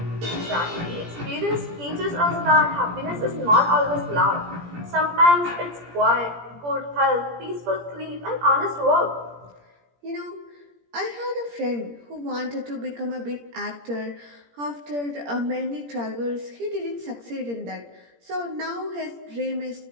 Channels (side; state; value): left; late; 17 ms